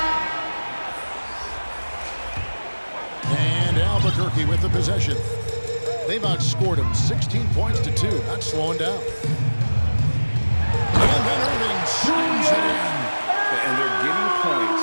And Albuquerque with the possession. They've outscored him 16 points to 2. Not slowing down. And then Irving shoots it in. And they're getting points.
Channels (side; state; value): both; inverted; correlation -1.00